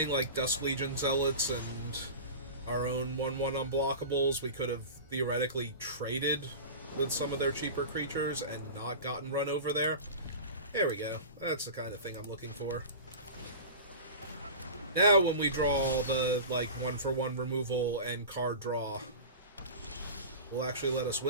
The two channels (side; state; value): both; inverted; correlation -0.32